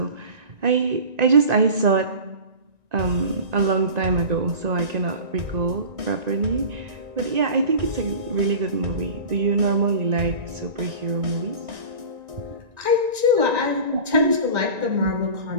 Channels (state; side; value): late; left; 1.9 ms